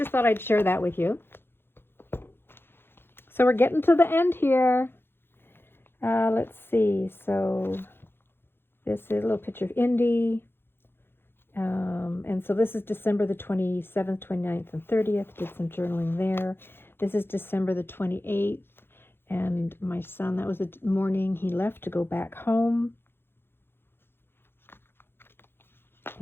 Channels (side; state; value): right; late; 0.11 ms